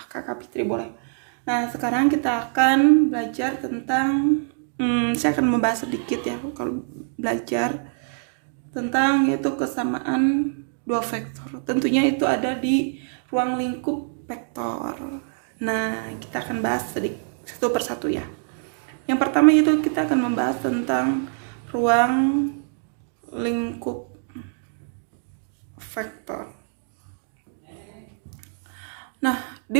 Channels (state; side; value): silent; left; 62 dB below the other